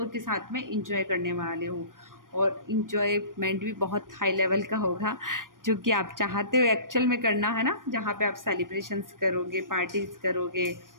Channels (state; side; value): late; left; 0.90 ms